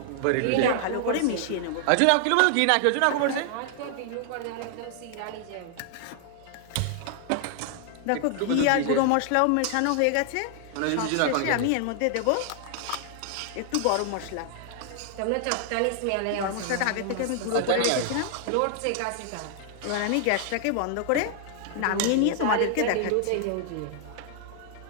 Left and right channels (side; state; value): both; different; correlation 0.00